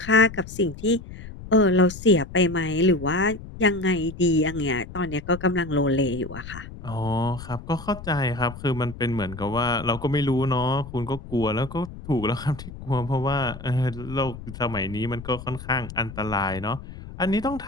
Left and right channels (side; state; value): left; noise; rumble, 13 dB below the sound